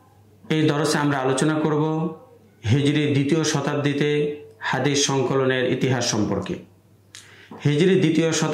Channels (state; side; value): identical; both; correlation 1.00